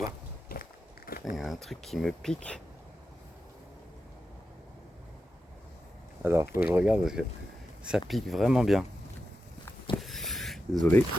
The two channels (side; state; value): both; normal; correlation 0.90